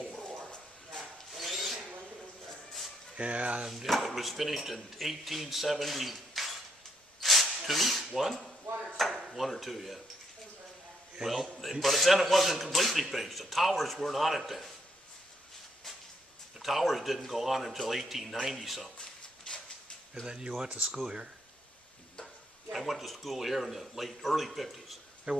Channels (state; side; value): normal; both; correlation 0.73